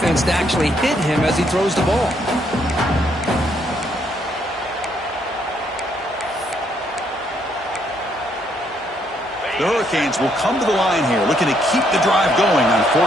to actually hit him as he throws the ball. The Hurricanes will come to the line here, looking to keep the drive going on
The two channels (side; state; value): both; normal; correlation 0.72